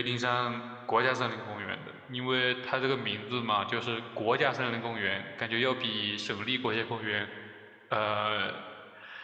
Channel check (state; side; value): identical; both; correlation 1.00